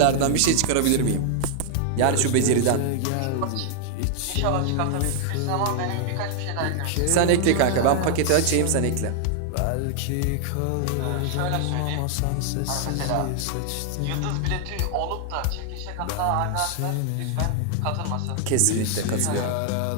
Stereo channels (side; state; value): both; different; correlation -0.01